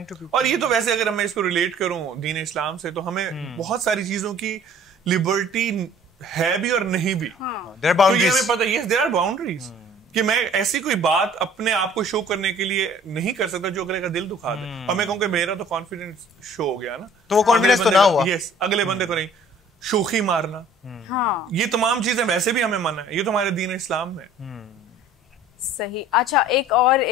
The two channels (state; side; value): normal; both; correlation 0.51